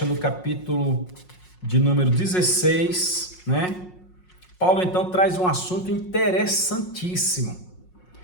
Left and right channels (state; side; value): late; right; 5.5 ms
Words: no capítulo de número 16, Paulo então traz um assunto interessantíssimo.